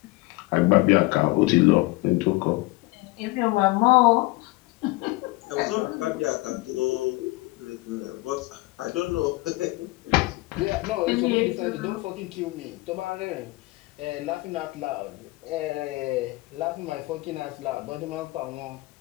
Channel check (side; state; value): right; quieter; 22.2 dB